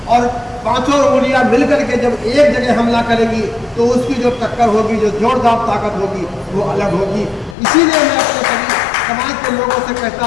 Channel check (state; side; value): drops out; right; at 7.6 s